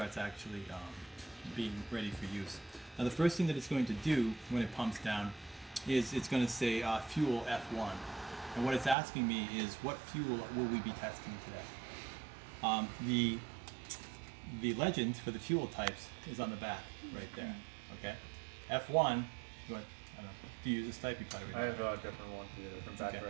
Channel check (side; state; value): left; drops out; at 9.0 s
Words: actually being ready for use. Now the first thing that it's going to do when it pumps down is it's going to say fuel F1. And what it's asking me is what fuel will we be testing today? The legend for the fuel types is on the back right there. Okay, F1. Do you use this type? You probably I have a different one here from back Okay.